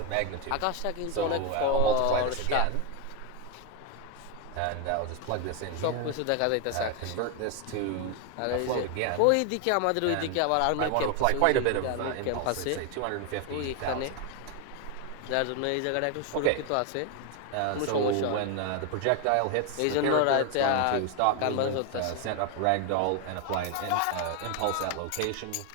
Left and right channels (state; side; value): different; both; correlation 0.01